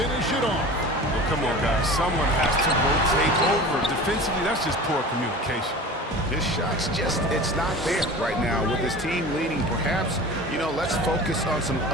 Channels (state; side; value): normal; both; correlation 0.36